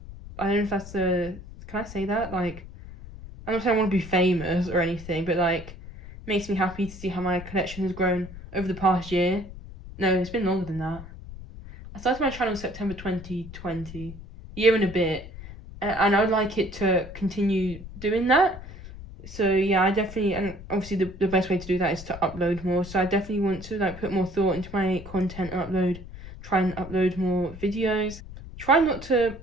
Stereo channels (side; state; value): left; noise; rumble, 14 dB below the sound